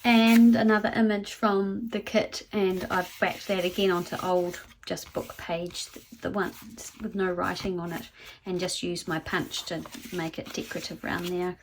And another image from the kit, and I've backed that again onto old just book page, the one with no writing on it, and just used my punch to make it decorative around there. I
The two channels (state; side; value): identical; both; correlation 1.00